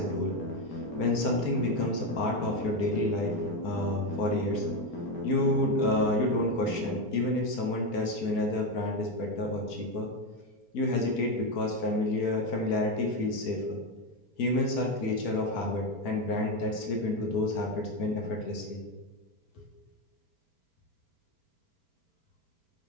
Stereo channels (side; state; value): right; late; 4.4 ms